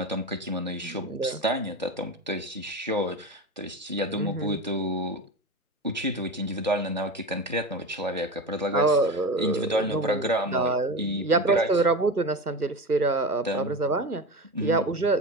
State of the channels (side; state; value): both; normal; correlation 0.25